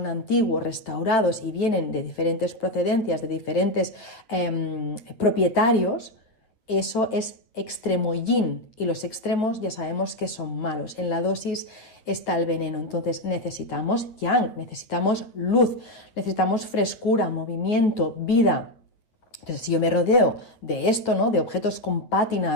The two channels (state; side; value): late; right; 8.9 ms